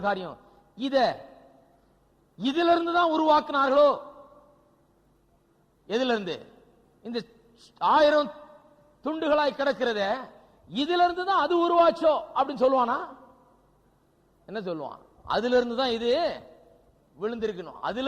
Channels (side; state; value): both; identical; correlation 1.00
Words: காரியம். இதுல இருந்து தான் உருவாக்குனார்களோ. எதுல இருந்து? இந்த 1000 துண்டுகளாய் கிடக்கிறத இதுல இருந்து தான் அது உருவாச்சோ அப்படின்னு சொல்லுவானா? என்ன சொல்லுவான்? அதுல இருந்து தான் இது விழுந்திருக்கணும்,